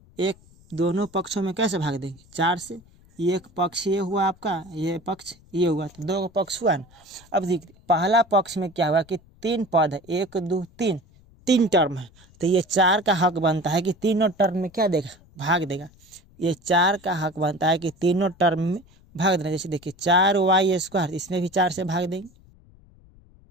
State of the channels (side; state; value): left; noise; rumble, 27 dB below the sound